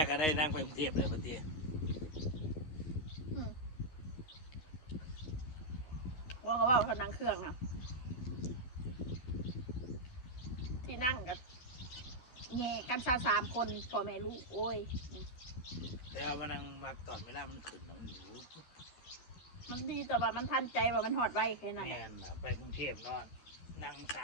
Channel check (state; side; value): late; right; 12 ms